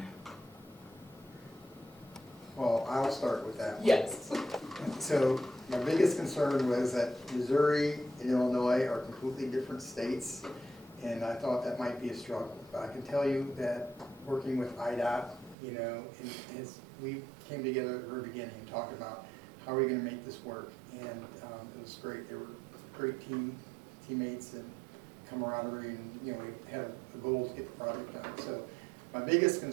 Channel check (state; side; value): drops out; left; at 15.6 s